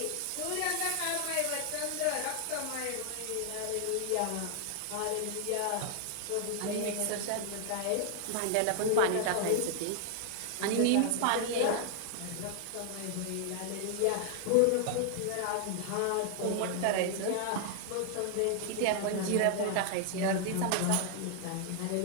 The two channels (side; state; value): both; different; correlation 0.00